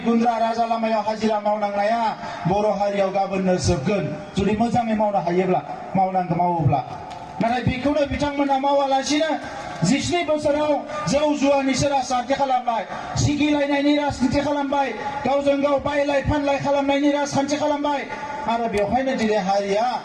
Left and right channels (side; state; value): both; identical; correlation 1.00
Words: गुन्द्रा राजा लामायाव हाजिरा मावनांनाया बर' हारियाव गाबोननो जोबगोन जुदि मोजाङै मावनो हायोब्ला मावोब्ला नाथाय बेखौनो बिथांमोना मावालासिनो 17 बोसोराव जौ जुवानिसो राजखान्थि खालामबाय सिगिलायनायनि राजखान्थि खालामबाय गावजों गाव बायलाय फानलाय खालामनायनि राजखान्थि खालामबाय आरो बेवहायनो दिनै हारिया